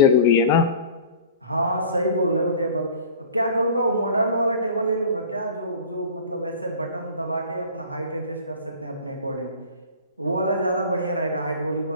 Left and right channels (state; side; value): inverted; both; correlation -0.41